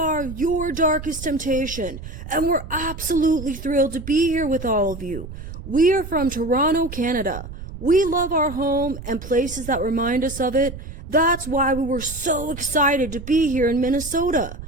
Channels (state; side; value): noise; right; rumble, 11 dB below the sound